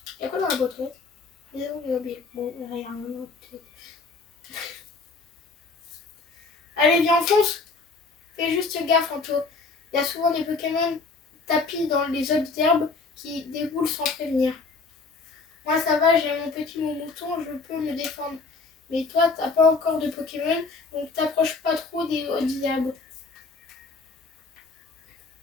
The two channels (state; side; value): quieter; right; 4.1 dB